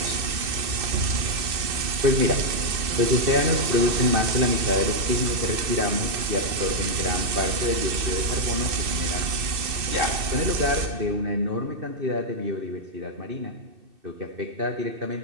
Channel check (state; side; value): late; left; 2.6 ms